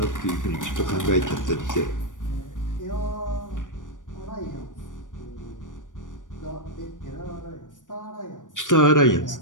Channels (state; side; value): late; right; 0.87 ms